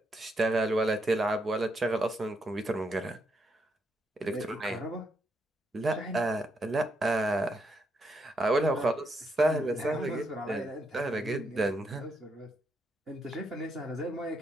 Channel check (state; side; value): normal; both; correlation 0.79